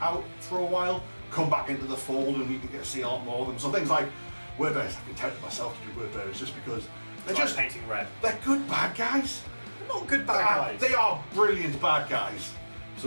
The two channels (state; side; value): inverted; both; correlation -1.00